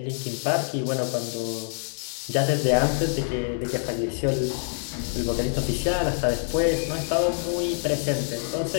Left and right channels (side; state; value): right; silent; 61 dB below the other